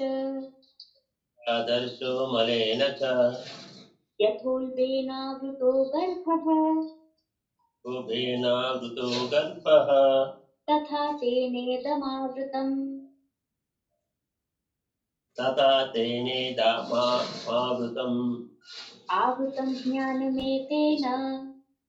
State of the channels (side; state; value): both; identical; correlation 1.00